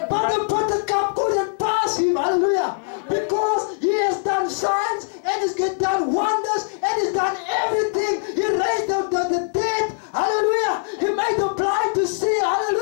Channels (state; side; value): silent; right; digital silence